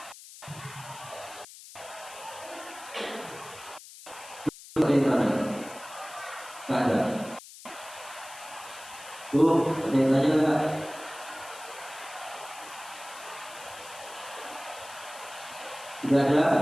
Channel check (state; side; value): noise; left; hiss, 16 dB below the sound